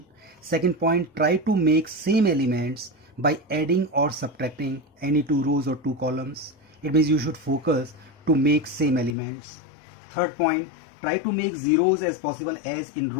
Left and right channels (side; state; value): right; drops out; at 9.2 s